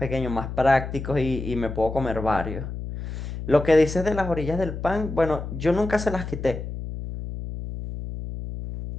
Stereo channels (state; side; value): noise; left; hum, 7 dB below the sound